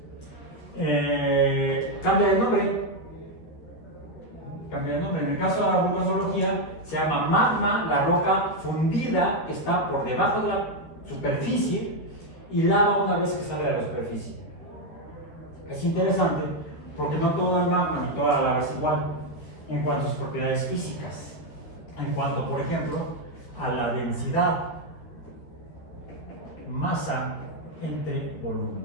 Cambia de nombre. En el caso de la vulcanología se llama magma, la roca fundida que está por debajo de la superficie, y lava una vez que sale de la superficie. Es interesante porque no todo el magma ni toda la lava es igual en cuanto a sus propiedades físicas, en cuanto, por ejemplo, a la densidad. masa entre volumen.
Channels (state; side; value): late; right; 13 ms